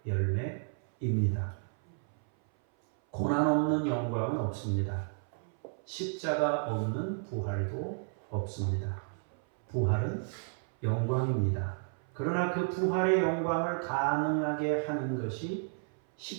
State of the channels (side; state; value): left; silent; 56 dB below the other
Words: 열매입니다. 고난 없는 영광은 없습니다. 십자가 없는 부활도 없습니다. 부활은 영광입니다. 그러나 그 부활의 영광을 가능하게 하는 것이